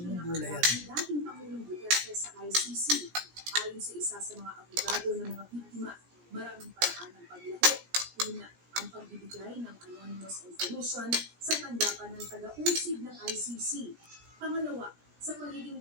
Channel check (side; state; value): left; late; 17 ms